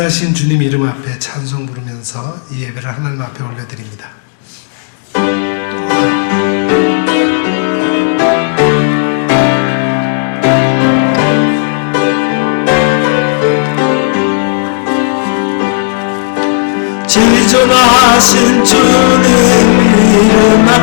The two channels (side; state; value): right; silent; digital silence